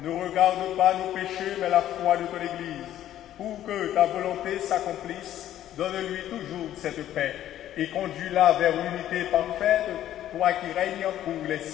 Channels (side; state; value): right; quieter; 12.2 dB